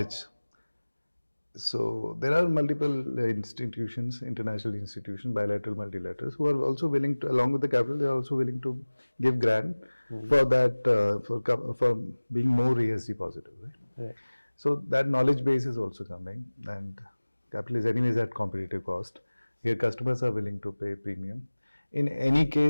So there are multiple institutions, international institutions, bilateral, multilaterals, who are also willing to, along with the capital, they are also willing to give grant for that, for being more ESG positive, right? Right. So that knowledge base is also coming, and capital is anyways at competitive cost. Here customers are willing to pay premium. In any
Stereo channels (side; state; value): both; inverted; correlation -1.00